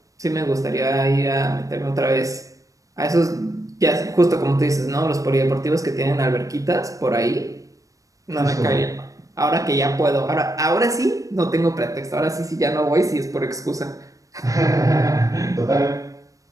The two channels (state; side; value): late; left; 0.16 ms